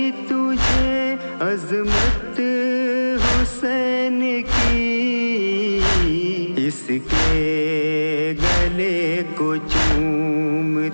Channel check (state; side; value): inverted; both; correlation -1.00